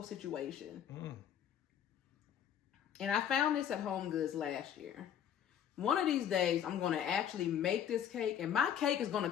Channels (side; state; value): right; quieter; 9.4 dB